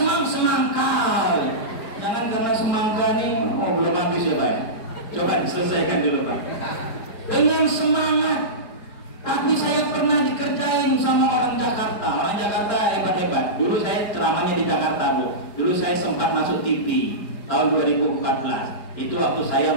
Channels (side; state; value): right; late; 4.9 ms